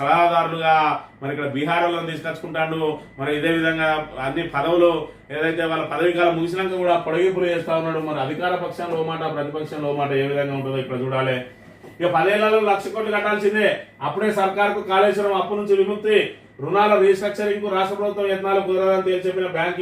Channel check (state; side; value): identical; both; correlation 1.00